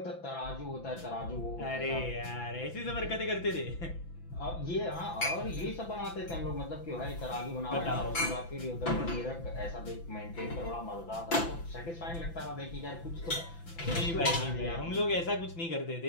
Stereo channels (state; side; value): late; right; 5.9 ms